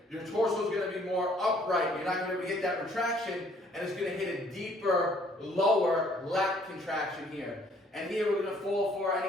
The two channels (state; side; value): normal; both; correlation 0.61